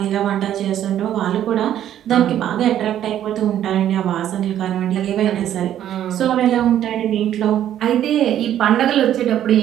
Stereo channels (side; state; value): left; quieter; 11.1 dB